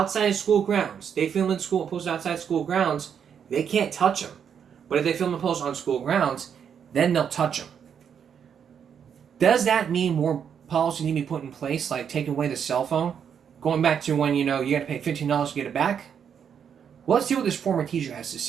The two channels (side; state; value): left; quieter; 7.8 dB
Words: of school grounds, they film in school and post outside school grounds, they can't touch them. But if they film and post on school grounds, then they'll touch them. Does that mean more policy need to be put in place, like taking away the cell phone? Going back to when, you got to pay $15 to get it back? Well, let's see what this former teacher has to